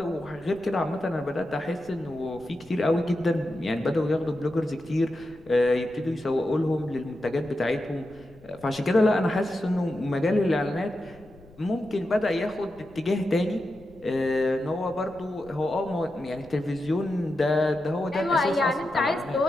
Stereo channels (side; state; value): left; noise; rumble, 24 dB below the sound